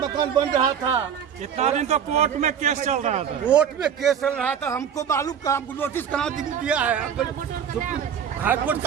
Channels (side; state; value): left; quieter; 8.1 dB